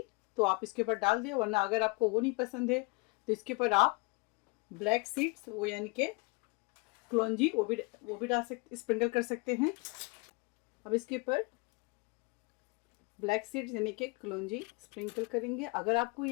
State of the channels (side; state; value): right; quieter; 29.2 dB